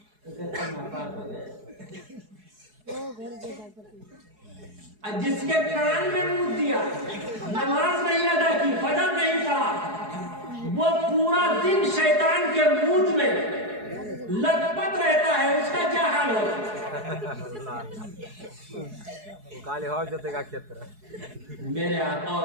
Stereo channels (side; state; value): left; late; 4.7 ms